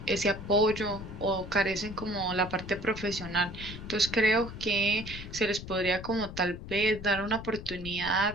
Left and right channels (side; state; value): left; noise; rumble, 11 dB below the sound